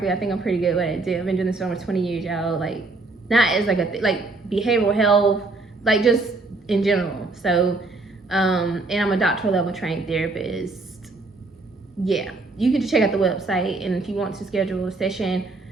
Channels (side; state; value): left; quieter; 3.4 dB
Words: I think I'm pretty good at it. I've been doing this for almost 20 years, y'all. Like, not as like like behavioral health, like just in general. So, and I'm a doctoral level trained therapist. Yeah, you can just check out the website, and if you want to schedule a session,